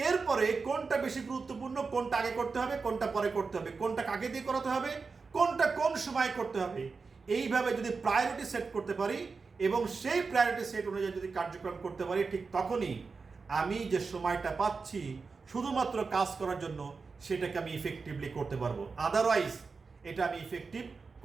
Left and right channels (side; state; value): left; quieter; 4.6 dB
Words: এরপরে কোনটা বেশি গুরুত্বপূর্ণ, কোনটা আগে করতে হবে, কোনটা পরে করতে হবে, কোনটা কাকে দিয়ে করাতে হবে, কোনটা কোন সময় করতে হবে, এইভাবে যদি প্রায়োরিটি সেট করতে পারি এবং সেই প্রায়োরিটি সেট অনুযায়ী যদি কার্যক্রম করতে পারি, ঠিক তখনই আমি যে সময়টা পাচ্ছি শুধুমাত্র কাজ করার জন্য, সেটাকে আমি ইফেক্টিভলি করতে পারবো। আদারওয়াইজ এটা আমি ইফেক্টিভ